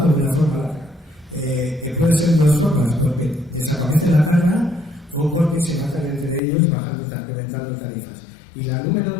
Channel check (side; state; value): right; drops out; at 6.4 s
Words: de una forma larga. Que puede ser de 2 formas, porque desaparece la carga o porque se matan entre ellos reventando tarifas. Y la número